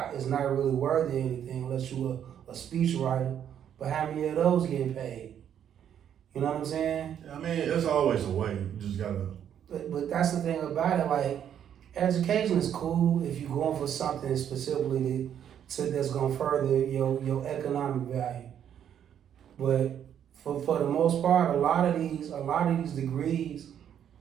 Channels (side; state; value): left; quieter; 9.4 dB